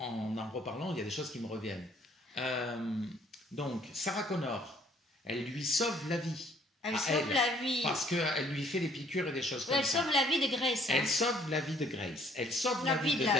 reparlant, il y a des choses qui me reviennent. Donc, Sarah Connor, elle lui sauve la vie. Elle sauve la vie. Parce qu'elle lui fait des piqûres et des choses comme ça. Elle sauve la vie de Grace. Elle sauve la vie de Grace. Elle sauve la vie de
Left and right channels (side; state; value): both; normal; correlation 0.61